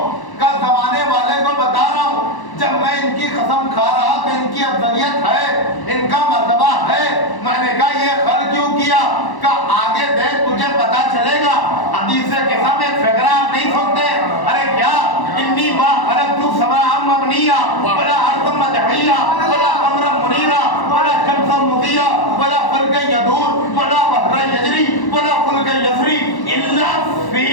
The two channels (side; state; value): right; late; 1.1 ms